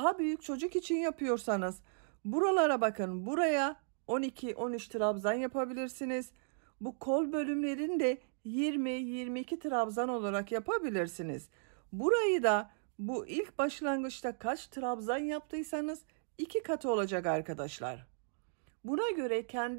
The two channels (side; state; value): left; silent; digital silence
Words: büyük çocuk için yapıyorsanız buralara bakın, buraya 12-13 trabzan yapabilirsiniz. Bu kol bölümlerini de 20-22 trabzan olarak yapabilirsiniz. Burayı da bu ilk başlangıçta kaç trabzan yaptıysanız 2 katı olacak arkadaşlar. Buna göre